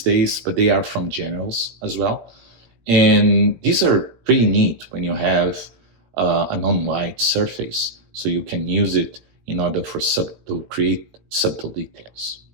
days, but they are from Generals as well. And these are pretty neat when you have a non-white surface, so you can use it in order to create subtle details.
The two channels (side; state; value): left; late; 17 ms